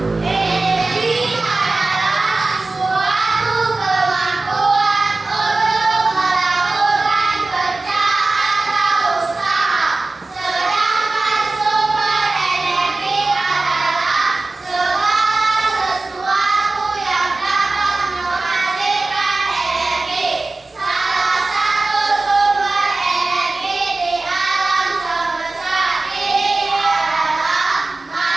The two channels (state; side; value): quieter; left; 3.3 dB